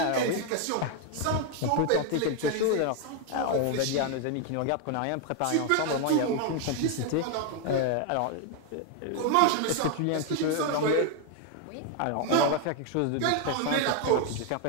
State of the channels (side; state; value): both; different; correlation 0.01